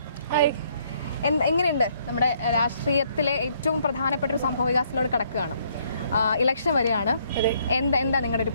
എങ്ങനെയുണ്ട്? നമ്മുടെ രാഷ്ട്രീയത്തിലെ ഏറ്റവും പ്രധാനപ്പെട്ട ഒരു സംഭവ വികാസത്തിലൂടെ കിടക്കുകയാണ്. ഇലക്ഷൻ വരികയാണ്. എന്താ നിങ്ങളുടെ ഒരു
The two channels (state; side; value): inverted; both; correlation -0.67